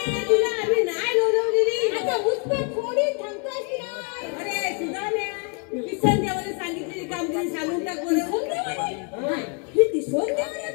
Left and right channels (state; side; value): quieter; right; 35.9 dB